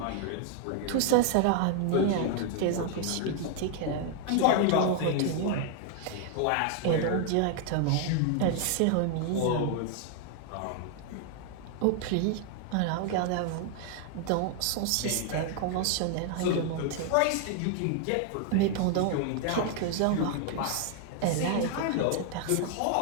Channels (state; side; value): different; both; correlation 0.00